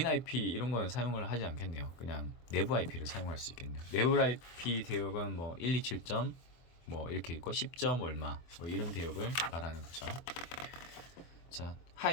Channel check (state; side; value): late; right; 24 ms